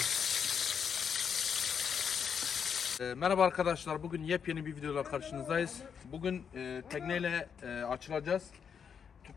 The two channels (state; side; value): quieter; right; 7.1 dB